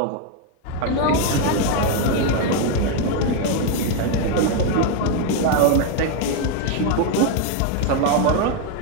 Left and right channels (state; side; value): different; both; correlation 0.01